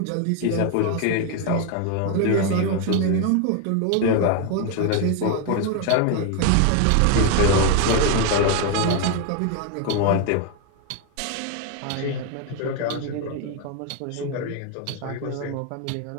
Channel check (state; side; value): different; both; correlation 0.01